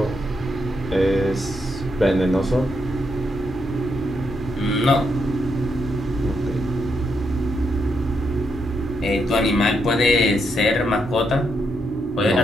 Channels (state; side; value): normal; both; correlation 0.79